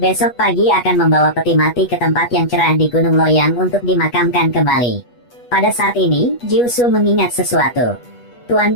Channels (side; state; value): right; late; 8.3 ms